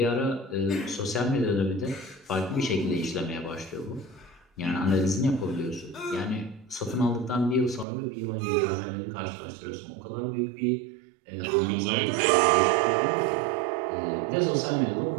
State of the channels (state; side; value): drops out; left; at 7.9 s